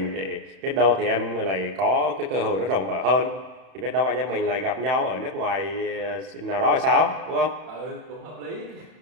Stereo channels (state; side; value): late; left; 31 ms